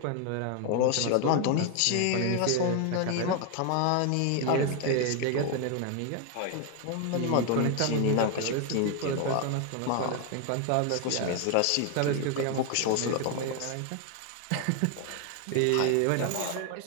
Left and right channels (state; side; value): different; both; correlation 0.01